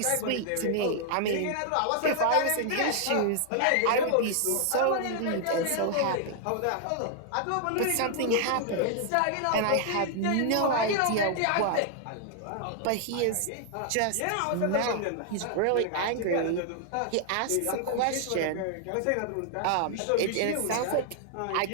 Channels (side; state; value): both; different; correlation 0.00